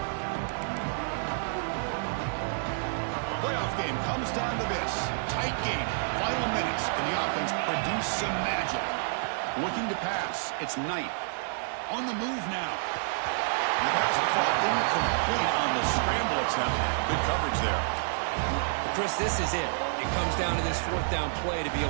Comes down to this. Tight game. Final minutes. Can the offense produce some magic? strategic. Looking to pass. It's Knight. On the move now. The pass will fall incomplete on the scramble attempt. Good coverage there. Chris, this is it. It comes down to this fourth down play to be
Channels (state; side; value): silent; left; digital silence